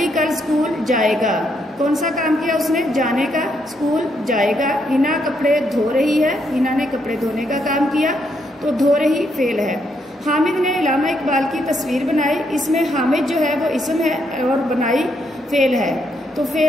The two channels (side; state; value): both; normal; correlation 0.76